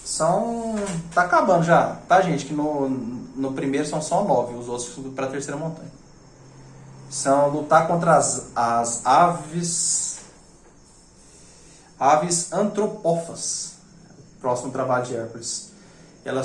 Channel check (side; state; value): both; identical; correlation 1.00